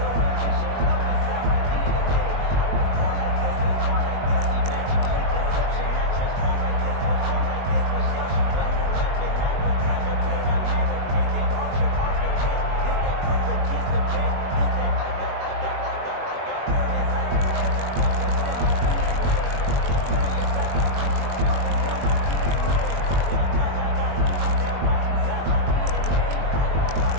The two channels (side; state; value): left; late; 21 ms